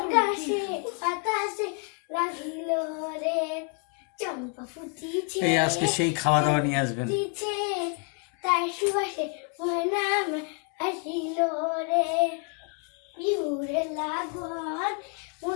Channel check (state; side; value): quieter; right; 39.6 dB